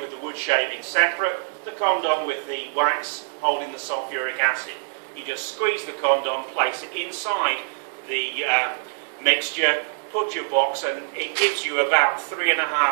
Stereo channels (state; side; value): silent; left; digital silence